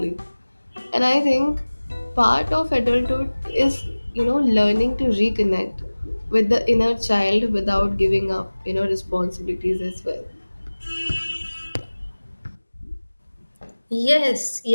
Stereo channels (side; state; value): both; inverted; correlation -1.00